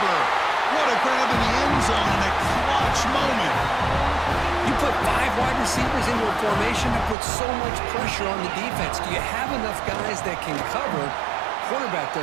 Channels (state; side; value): drops out; left; at 7.2 s